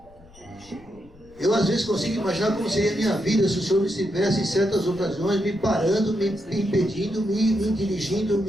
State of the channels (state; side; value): noise; left; rumble, 25 dB below the sound